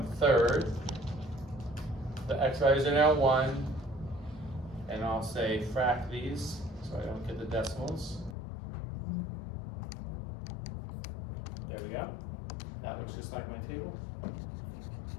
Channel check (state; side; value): drops out; right; at 8.3 s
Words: The x values are now 1, and I'll say frac these so I don't get the decimals. There we go. That looks just like my table.